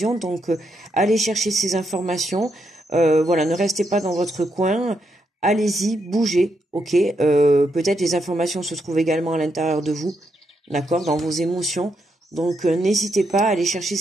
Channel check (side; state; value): both; normal; correlation 0.80